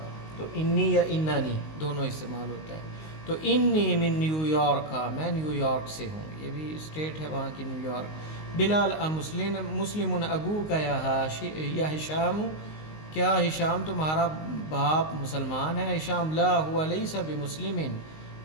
تو انی یا انانی دونوں استعمال ہوتا ہے۔ تو انی من نیو یارک، میں نیو یارک سے ہوں، یہ بھی اسٹیٹ ہے وہاں کی، نیو یارک۔ بلال مسلم ابو کا یا ہشام، کیا ہشام تمہارا باپ مسلمان ہے؟ ہشام لا ہوا لیسا بمسلم،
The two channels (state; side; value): late; right; 19 ms